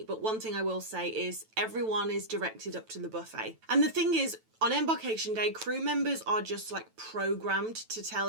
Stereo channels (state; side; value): late; left; 9.1 ms